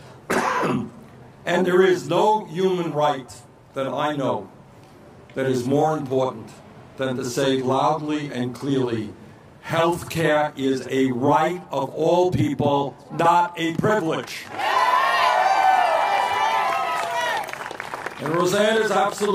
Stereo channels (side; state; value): both; identical; correlation 1.00